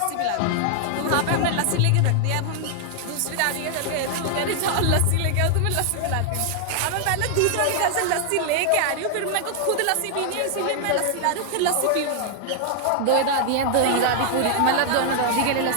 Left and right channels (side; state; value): both; different; correlation 0.00